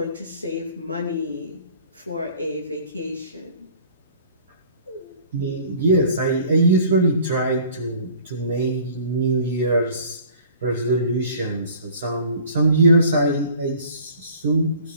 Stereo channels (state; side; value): inverted; both; correlation -0.50